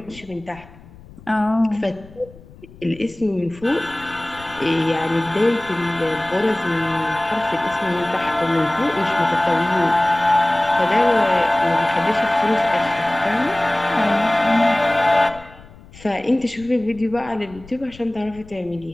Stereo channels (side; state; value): left; noise; rumble, 21 dB below the sound